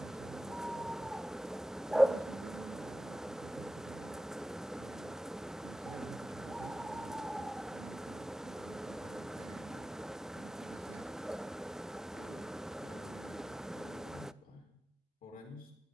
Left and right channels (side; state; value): both; normal; correlation 0.96